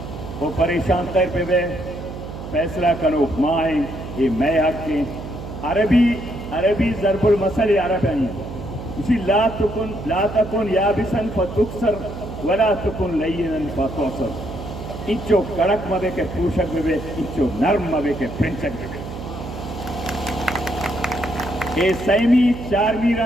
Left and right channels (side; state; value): right; noise; hum, 10 dB below the sound